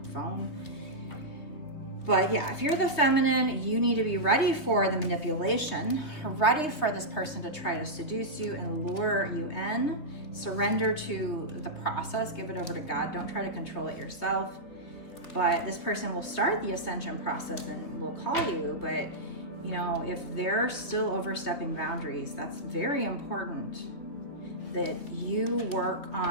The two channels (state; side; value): late; right; 3.3 ms